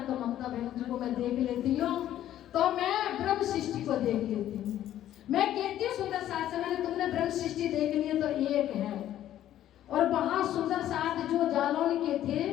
तो ममता बहन जी को मैं देख लेती हूँ, तो मैं ब्रह्म सृष्टि को देख लेती हूँ। मैं कहती हूँ सुंदर साथ से, मैंने तुमने ब्रह्म सृष्टि देख ली है तो एक है। और वहां सुंदर साथ जो जालौन के थे,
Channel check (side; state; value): right; quieter; 12.2 dB